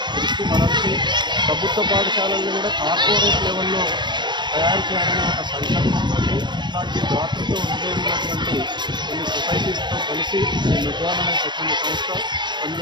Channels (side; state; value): left; late; 0.22 ms